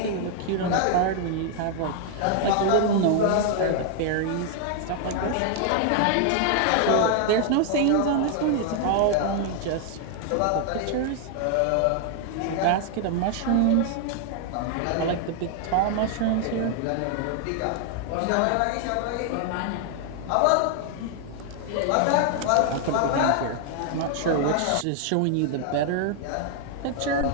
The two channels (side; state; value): both; different; correlation 0.00